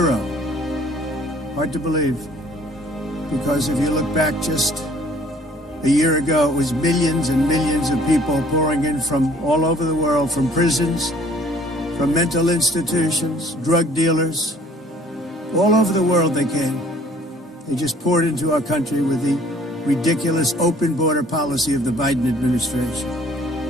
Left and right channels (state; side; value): normal; both; correlation 0.57